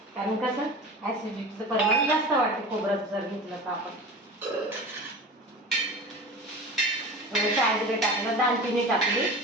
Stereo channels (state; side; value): normal; both; correlation 0.34